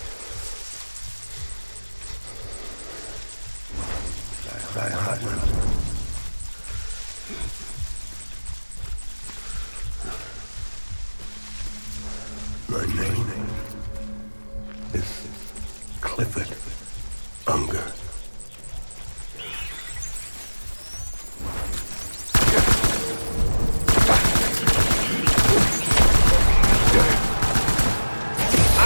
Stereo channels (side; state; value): both; inverted; correlation -1.00